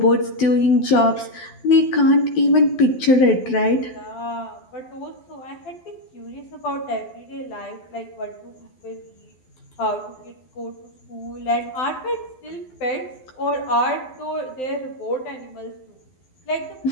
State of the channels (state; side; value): late; right; 12 ms